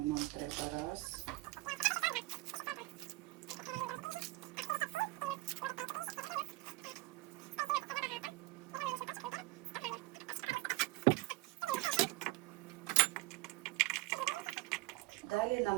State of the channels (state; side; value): quieter; left; 20.6 dB